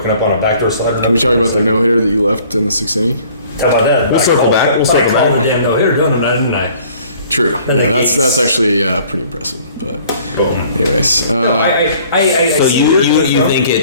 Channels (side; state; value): both; inverted; correlation -0.55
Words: up on a backdoor slider. Can we talk about the no-hitter that you left in the 6th inning? How about that? We'll circle back. We'll circle I called back. the damn no-hitter, didn't I? True. And Yeah, the that's Yankees. actually pretty impressive. But Boom. anyways, I So see you where you're from. think